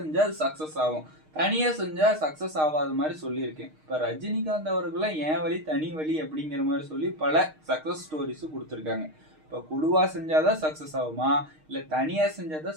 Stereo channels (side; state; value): left; late; 6.5 ms